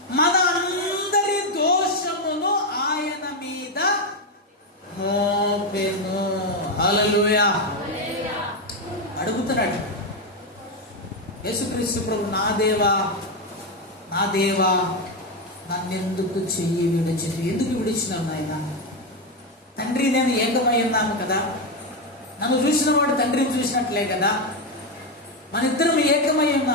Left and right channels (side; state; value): both; normal; correlation 0.08